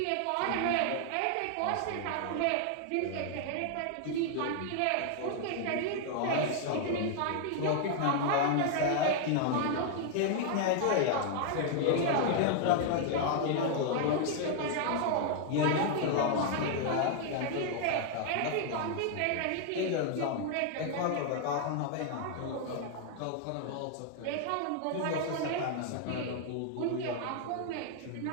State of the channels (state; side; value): different; both; correlation 0.00